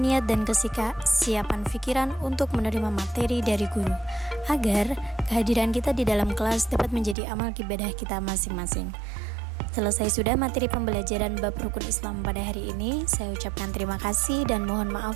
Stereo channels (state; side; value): drops out; left; at 7.2 s